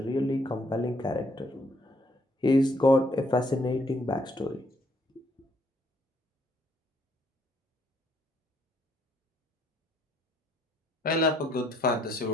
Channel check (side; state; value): both; normal; correlation 0.69